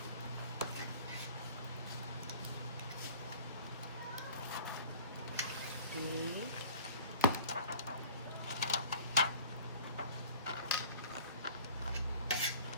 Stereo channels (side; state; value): both; inverted; correlation -0.43